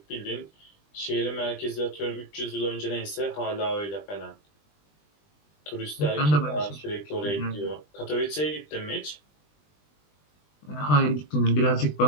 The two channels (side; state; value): right; late; 20 ms